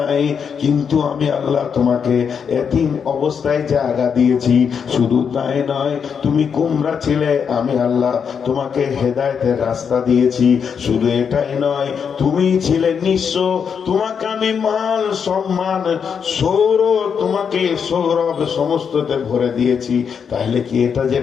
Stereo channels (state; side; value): quieter; right; 6.8 dB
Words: কিন্তু আমি আল্লাহ তোমাকে ইয়াতীম অবস্থায় জায়গা দিয়েছি। শুধু তাই নয়, তুমি গোমরা ছিলে, আমি আল্লাহ তোমাকে হেদায়েতের রাস্তা দিয়েছি। শুধু এটাই নয়, তুমি ছিলে নিঃস্ব, তোমাকে আমি মাল সম্মান তোমাকে সৌরভ সমস্ততে ভরে দিয়েছি। তাহলে কি এটা